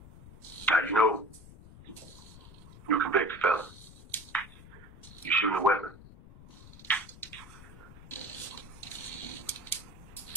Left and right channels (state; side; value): noise; left; rumble, 18 dB below the sound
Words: Now, you know, you're a convicted fella. You're shooting a weapon.